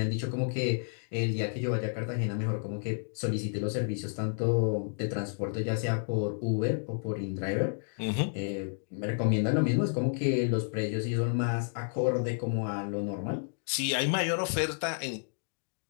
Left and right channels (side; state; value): right; silent; digital silence